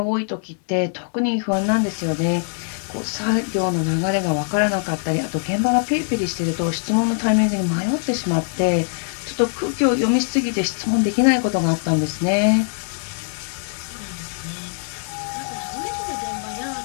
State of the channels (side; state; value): right; silent; digital silence